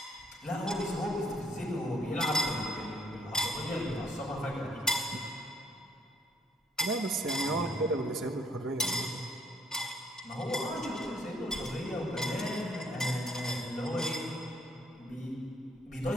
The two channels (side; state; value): both; normal; correlation 0.66